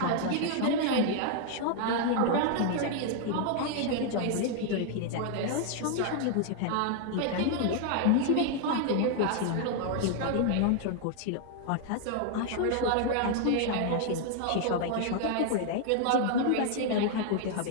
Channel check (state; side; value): different; both; correlation 0.00